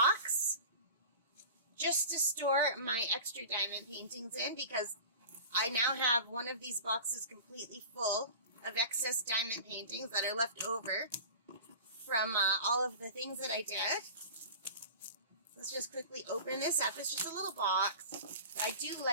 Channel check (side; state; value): both; inverted; correlation -0.37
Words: just to store my extra diamond paintings in, because I now have one of these boxes completely full of excess diamond paintings that are left over from all of the things that I did. Let's just quickly open this up. It's just a little box. I do